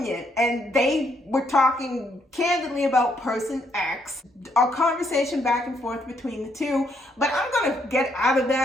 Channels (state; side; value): normal; both; correlation 0.73